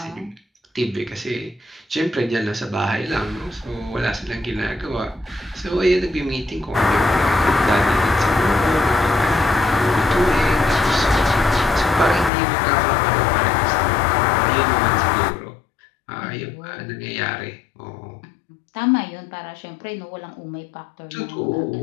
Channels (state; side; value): drops out; right; at 12.3 s